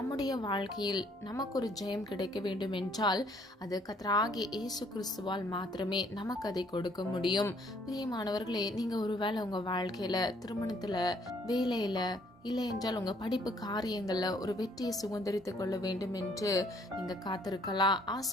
வாழ்க்கையில் நமக்கு ஒரு ஜெயம் கிடைக்க வேண்டும் என்றால் அது கர்த்தராகிய இயேசு கிறிஸ்துவால் மாத்திரமே நமக்கு அதை கொடுக்க முடியும். பிரியமானவர்களே, நீங்க ஒருவேளை உங்க வாழ்க்கையில, திருமணத்துல, வேலையில, இல்லை என்றால் உங்க படிப்பு காரியங்கள்ல ஒரு வெற்றியை சுதந்திரித்துக் கொள்ள வேண்டும் என்று நீங்க காத்திருக்கலாம்.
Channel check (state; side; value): normal; both; correlation 0.64